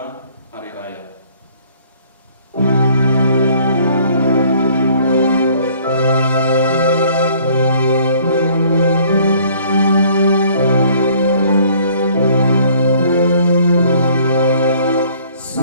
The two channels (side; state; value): both; inverted; correlation -0.58